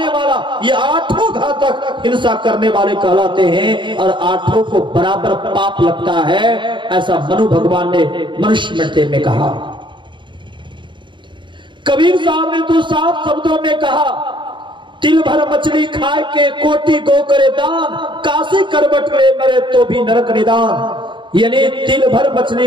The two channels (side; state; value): left; late; 0.23 ms